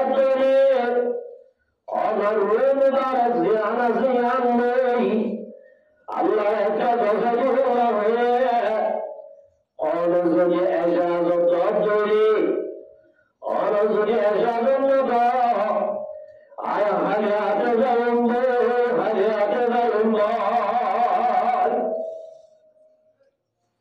করে অনর মুবারক জিয়ানা জিয়ান নেই আল্লাহ একটা দশা হয়ে অন যদি এজাজত করে অন যদি এজাজত আয় হাজাতে যাবেন হাজাতে যাবেন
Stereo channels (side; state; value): both; identical; correlation 1.00